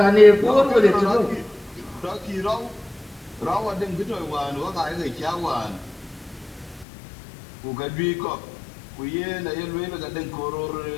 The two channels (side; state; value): right; drops out; at 6.9 s